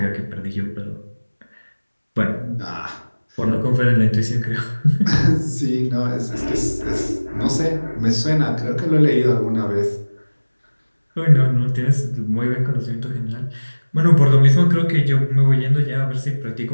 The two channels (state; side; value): inverted; both; correlation -1.00